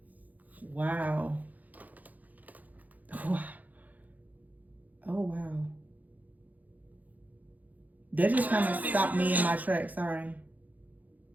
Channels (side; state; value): left; late; 0.080 ms